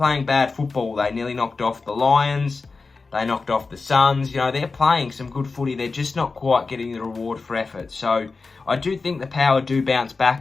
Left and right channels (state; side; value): quieter; right; 4.2 dB